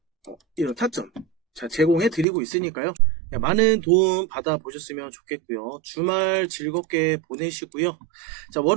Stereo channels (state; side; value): drops out; left; at 2.2 s